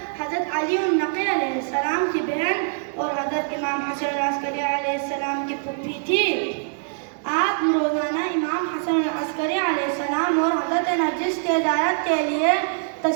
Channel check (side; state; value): left; silent; digital silence